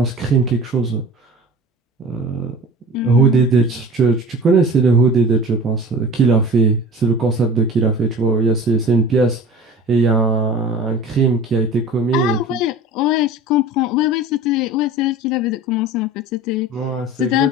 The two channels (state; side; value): normal; both; correlation 0.39